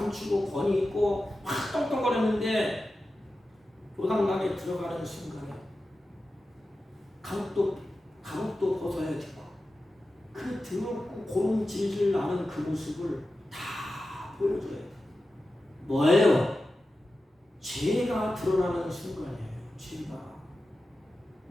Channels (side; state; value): both; normal; correlation 0.93